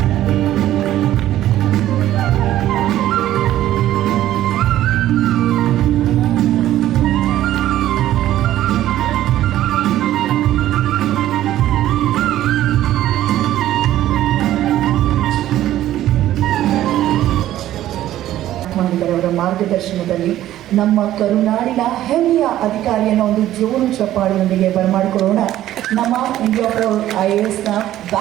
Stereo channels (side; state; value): left; quieter; 13.3 dB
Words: ಅವರ ಮಾರ್ಗದರ್ಶನದಲ್ಲಿ ನಮ್ಮ ಕರುನಾಡಿನ ಹೆಮ್ಮೆಯ ಅಧಿಕಾರಿಯನ್ನು ಒಂದು ಜೋರು ಚಪ್ಪಾಳಿಯೊಂದಿಗೆ ಬರಮಾಡಿಕೊಳ್ಳೋಣ. ನಮ್ಮ ಇಂಡಿಯಾ ಪ್ರೌಡ್ IASನ